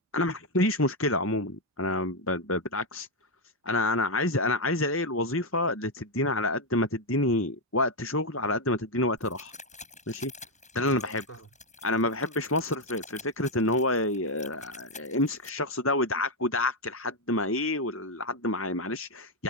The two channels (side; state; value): both; normal; correlation 0.03